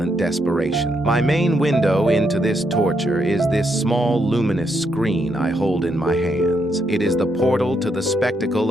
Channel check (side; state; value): both; normal; correlation 0.78